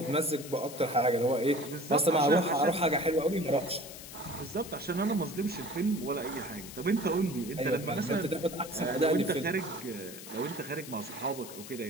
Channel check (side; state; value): left; noise; hiss, 13 dB below the sound